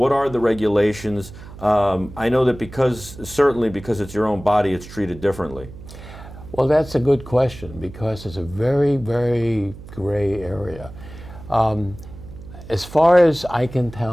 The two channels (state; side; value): noise; right; hum, 16 dB below the sound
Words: are the regulations? I know that certainly because it's your own body, it's treated differently. Well, that's a good question because it's a very, very gray area. As far as I can